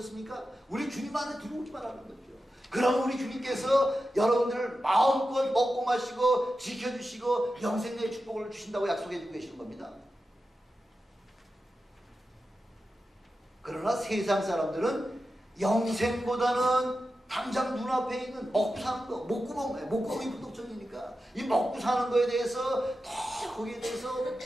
우리 주님 안에 들어오기만 하는 거죠. 그럼 우리 주님께서 여러분들을 마음껏 먹고 마시고 지켜주시고 영생의 축복을 주신다고 약속해주고 계시는 겁니다. 그러나 세상 사람들은 영생보다는 당장 눈앞에 있는 먹고 사는 거, 목구멍이 부족전이니까 이 먹고 사는 거에 대해서 더 거기에 대해서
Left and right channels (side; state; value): both; normal; correlation 0.91